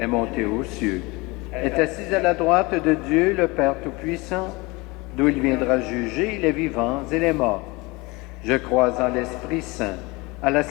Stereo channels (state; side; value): quieter; right; 24.6 dB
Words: monté aux cieux, est assis à la droite de Dieu, le Père Tout-Puissant, d'où il viendra juger les vivants et les morts. Je crois en l'Esprit Saint, à la